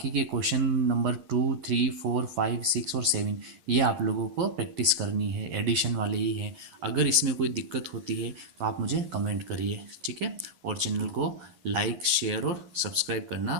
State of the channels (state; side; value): late; left; 11 ms